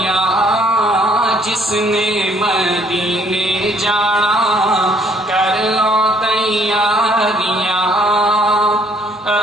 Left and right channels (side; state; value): both; normal; correlation 0.63